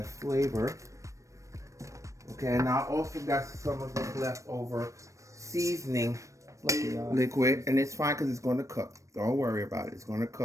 flavor. Okay, and I also got some of this leftover seasoning liquid. And it's fine because it's going to cook. Don't worry about it. It's going to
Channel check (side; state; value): left; late; 0.15 ms